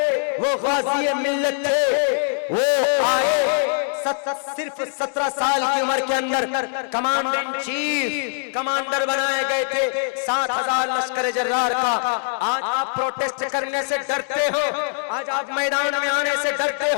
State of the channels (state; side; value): silent; right; digital silence